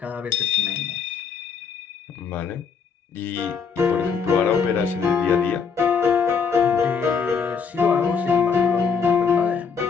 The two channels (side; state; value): right; quieter; 6.1 dB